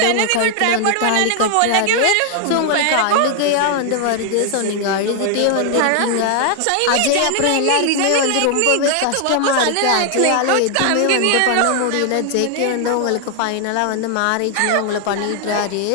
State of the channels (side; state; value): both; different; correlation 0.00